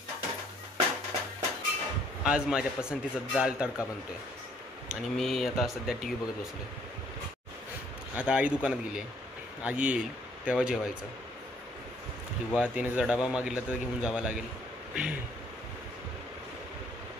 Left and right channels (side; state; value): both; normal; correlation 0.64